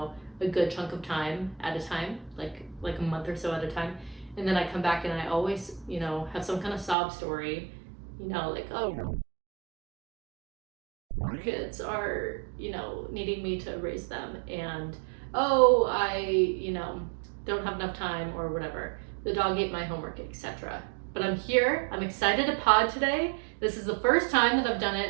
a good chunk of time at a time, like a month or so at a time. And then I come back and I always, have some kind of sob story, kids are, needing me to raise them, and I, don't have enough time or whatever. The dog ate my homework, etc. But I'm here. I'm excited to pod today. This is the first time that I've done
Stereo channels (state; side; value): drops out; left; at 7.0 s